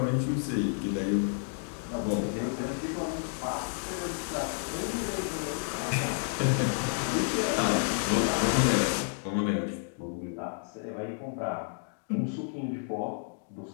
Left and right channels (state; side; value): silent; right; digital silence